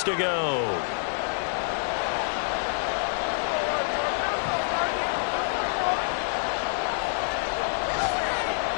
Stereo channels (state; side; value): silent; right; digital silence